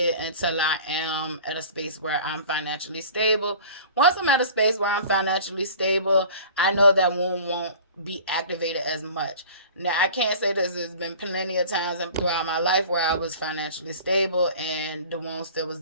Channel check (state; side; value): inverted; both; correlation -0.42